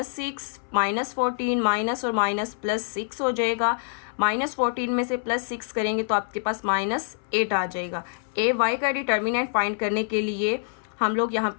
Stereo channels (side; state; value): right; silent; 61 dB below the other